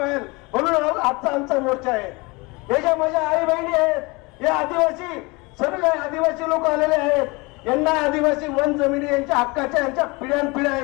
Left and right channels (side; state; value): right; quieter; 26.0 dB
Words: म्हणून आजचा आमचा मोर्चा आहे. हे ज्या माझ्या आई बहिणी आहेत, हे आदिवासी, सर्व आदिवासी लोक आलेले आहेत. यांना आदिवासी वन जमिनी यांच्या हक्काच्या, यांच्या पिढ्यानपिढ्या